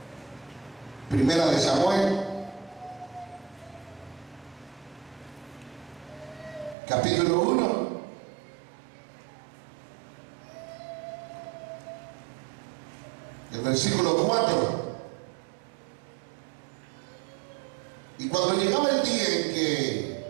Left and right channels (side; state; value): left; drops out; at 6.8 s